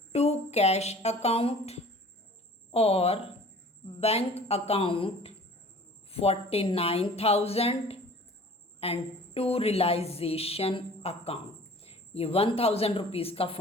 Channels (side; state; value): both; normal; correlation 0.47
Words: to cash account और bank account 49,000 and to realisation account. ये 1,000 रुपीज़ का